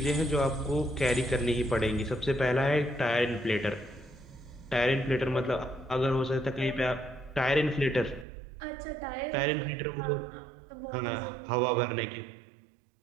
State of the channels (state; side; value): drops out; left; at 8.2 s